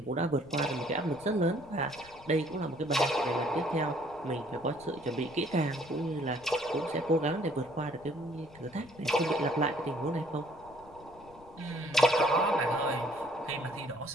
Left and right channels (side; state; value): left; noise; rumble, 23 dB below the sound